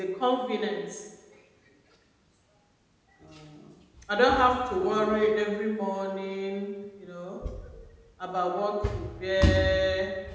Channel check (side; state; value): both; identical; correlation 1.00